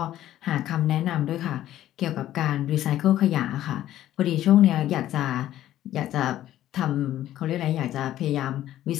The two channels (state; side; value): quieter; right; 13.0 dB